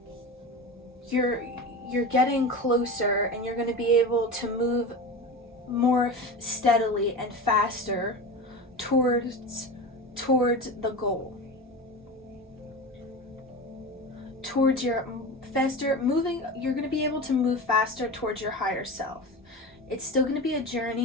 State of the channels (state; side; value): normal; both; correlation 0.27